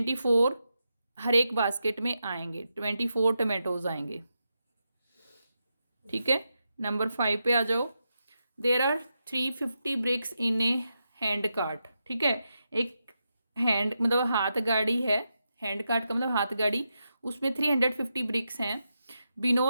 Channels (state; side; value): inverted; both; correlation -0.86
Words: हर एक बास्केट में आएंगे, 24 टमाटोज आएंगे, ठीक है। नंबर 5 पे आ जाओ, there are 350 bricks in a hand cart, ठीक है। एक हैंड मतलब हाथ गाड़ी है, हैंड कार्ट का मतलब हाथ गाड़ी, उसमें 350 ब्रिक्स हैं।